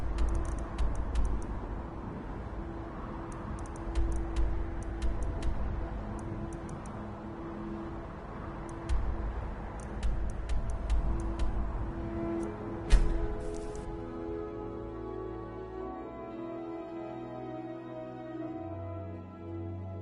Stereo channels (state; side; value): identical; both; correlation 1.00